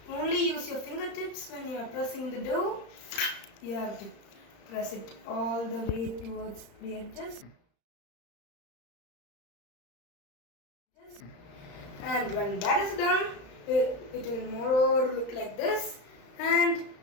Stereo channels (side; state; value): right; late; 35 ms